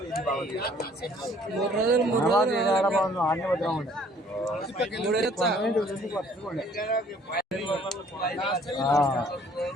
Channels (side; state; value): both; normal; correlation 0.58